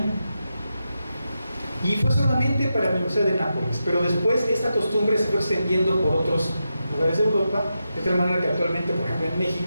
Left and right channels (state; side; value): inverted; both; correlation -0.88